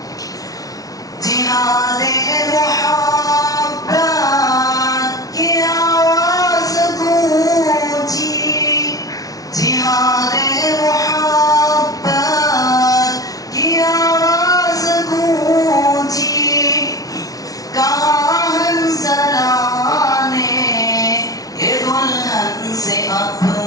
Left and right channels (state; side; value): late; right; 0.18 ms